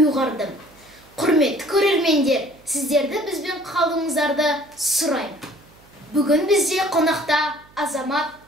Құрметті көрермендер, сіздерді бізбен қалуыңыздарды сұраймын. Бүгін бізде қонақта Азамат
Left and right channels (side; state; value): right; noise; hum, 28 dB below the sound